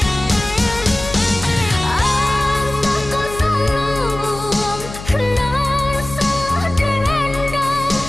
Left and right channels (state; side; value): noise; left; hum, 12 dB below the sound